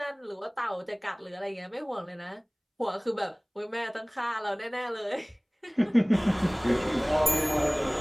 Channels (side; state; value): both; identical; correlation 1.00